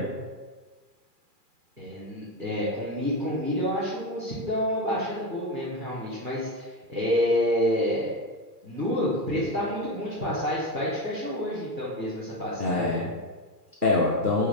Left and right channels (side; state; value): left; late; 2.4 ms